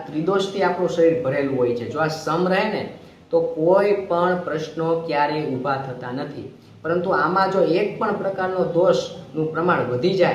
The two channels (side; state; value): both; identical; correlation 1.00